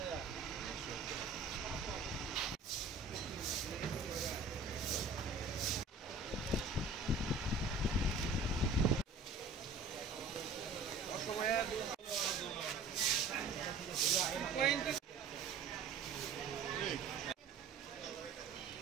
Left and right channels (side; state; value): left; quieter; 4.0 dB